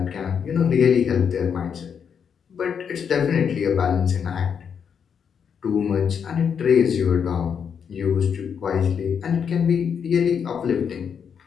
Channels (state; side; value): quieter; right; 7.2 dB